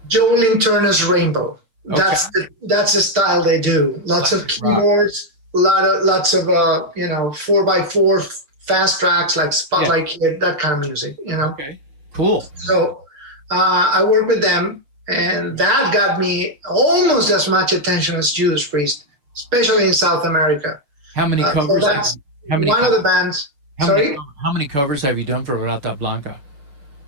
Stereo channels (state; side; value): late; left; 6.9 ms